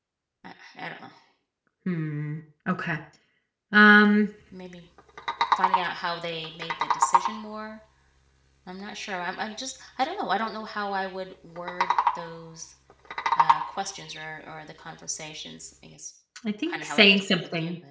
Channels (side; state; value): both; identical; correlation 1.00